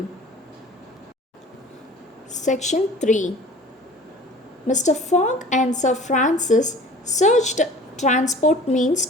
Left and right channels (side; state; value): both; normal; correlation 0.45